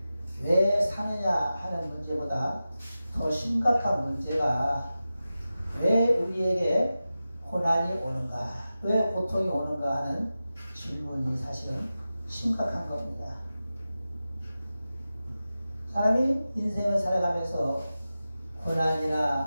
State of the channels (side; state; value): both; inverted; correlation -0.94